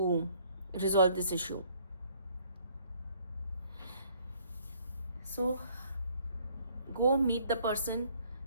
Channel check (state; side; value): inverted; both; correlation -0.62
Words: resolve this issue. So go meet the person